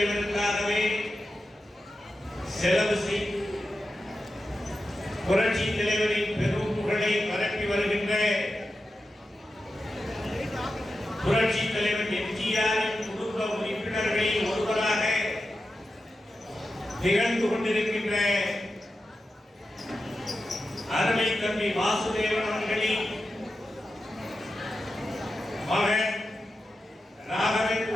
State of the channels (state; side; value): normal; both; correlation 0.91